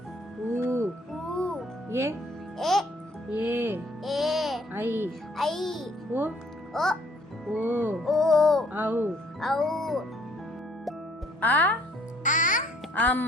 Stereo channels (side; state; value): both; normal; correlation 0.62